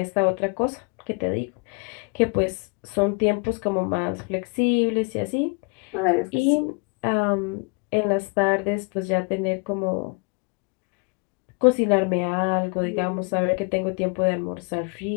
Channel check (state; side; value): quieter; right; 32.8 dB